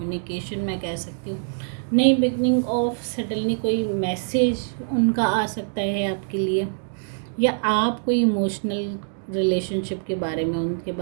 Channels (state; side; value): silent; left; digital silence